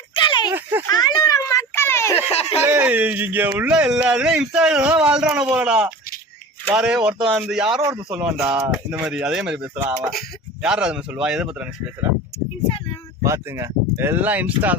இங்க உள்ள எல்லாருமே இன்ஸ்டாகிராம் வாழ்றான போடா. யாரு ஒருத்தன் வந்து யாரோ ஒருத்தன் சொல்லுவான்டா இந்த மாதிரி. அதே மாதிரி பேசுறான் அவன். யாரும் அது மாதிரி சொல்லுவா? எதை பத்தி பேசுறேன் பாத்துங்க. எல்லாம் இன்ஸ்டா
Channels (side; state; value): both; normal; correlation 0.36